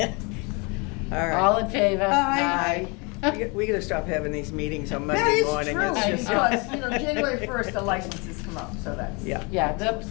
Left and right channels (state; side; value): quieter; right; 30.0 dB